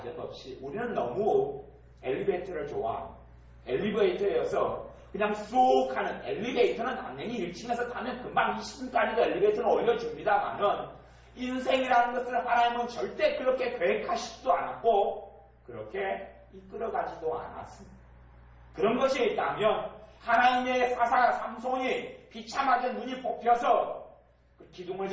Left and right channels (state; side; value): identical; both; correlation 1.00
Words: 없이 우리는 너무 엘리베이터를 좋아합니다. 엘리베이터여서 그냥 쑥 하는 엘리베이터는 당연히 1층에서 타면 금방 20층까지도 엘리베이터는 올려줍니다만은 인생이라는 것을 하나님은 절대 그렇게 계획하시지도 않았고 그렇게 이끌어가지도 않았습니다. 그런 것이 있다면 하나님의 사사 삼손이 비참하게 눈이 뽑혀서 그 기둥을